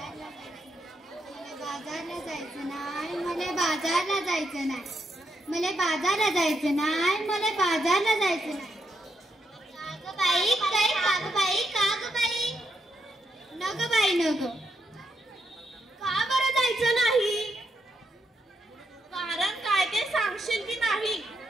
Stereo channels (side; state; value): both; normal; correlation 0.80